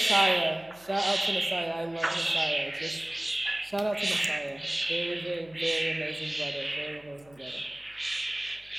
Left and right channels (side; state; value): left; noise; hum, 27 dB below the sound